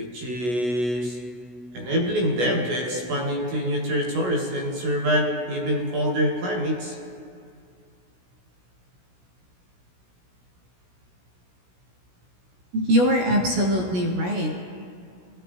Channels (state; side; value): late; left; 16 ms